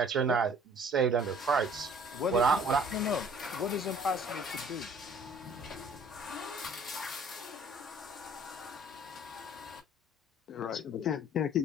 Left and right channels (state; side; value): normal; both; correlation 0.54